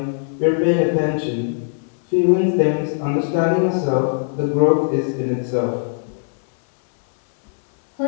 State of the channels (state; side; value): silent; right; 66 dB below the other